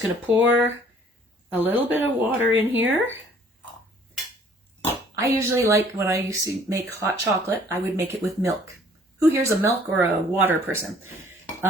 going to pour a little bit of water in here. I usually like, when I used to make hot chocolate, I would make it with milk. Who here's a milk or a water person?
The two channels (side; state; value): both; normal; correlation 0.57